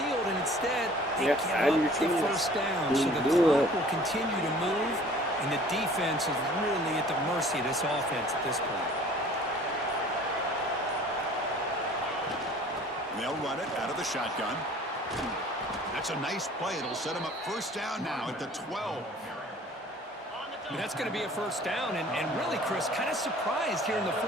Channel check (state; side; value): normal; both; correlation 0.50